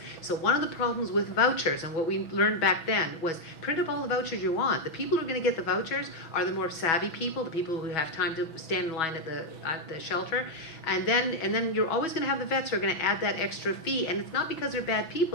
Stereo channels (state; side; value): late; right; 6.2 ms